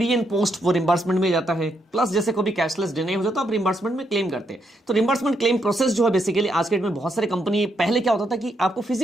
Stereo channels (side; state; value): both; normal; correlation 0.78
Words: एंड पोस्ट वो रिम्बर्समेंट में जाता है, प्लस जैसे कोई भी कैशलेस डिनाई हो जाता है आप रिम्बर्समेंट में क्लेम करते हैं। तो रिम्बर्समेंट क्लेम प्रोसेस जो है बेसिकली आज के डेट में बहुत सारे कंपनी, पहले क्या होता था कि आपको